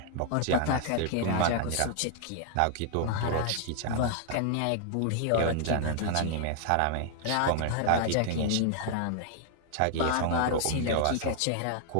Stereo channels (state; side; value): different; both; correlation -0.01